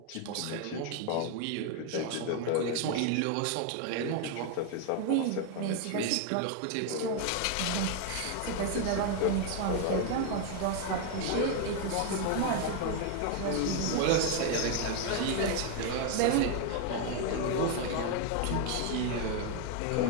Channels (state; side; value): different; both; correlation 0.01